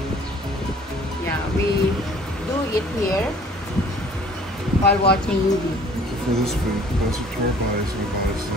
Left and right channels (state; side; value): normal; both; correlation 0.53